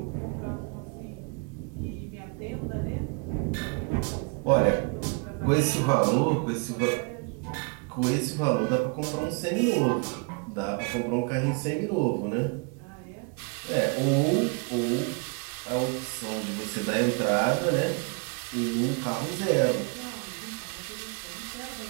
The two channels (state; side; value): quieter; left; 34.5 dB